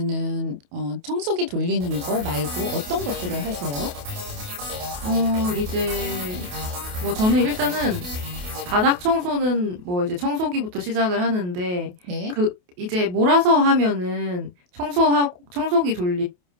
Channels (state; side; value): late; left; 28 ms